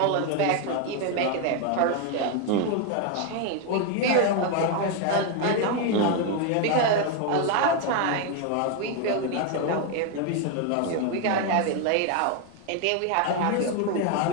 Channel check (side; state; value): both; different; correlation 0.01